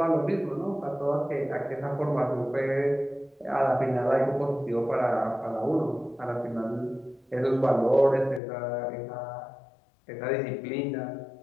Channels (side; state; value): right; drops out; at 8.4 s